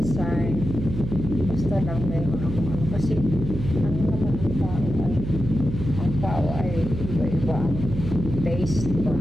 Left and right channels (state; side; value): noise; right; hum, 6 dB below the sound